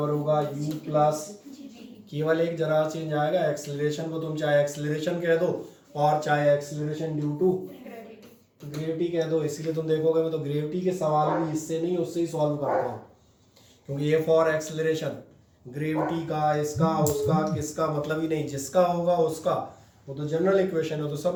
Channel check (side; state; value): both; identical; correlation 1.00